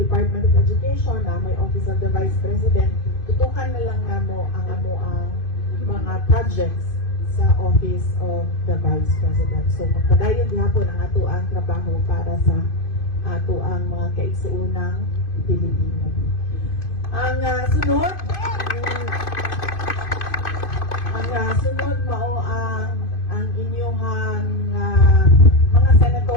of Education, na may Office of the Vice President, tutukan na lang namo ang mga projects sa Office of the Vice President. So magpadayon gihapon ang ato ang trabaho para sa ato ang mga kaigsuunang Pilipino. Ang sunod mao ang inyong mga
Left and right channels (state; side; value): late; right; 2.5 ms